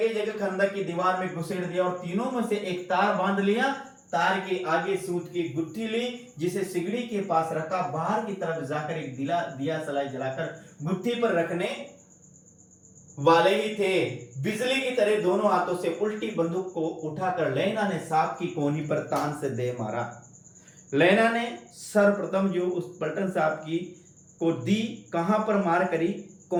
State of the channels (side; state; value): both; identical; correlation 1.00